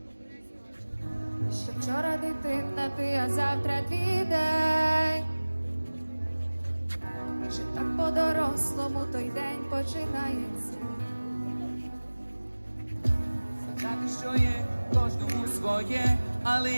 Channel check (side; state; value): both; inverted; correlation -1.00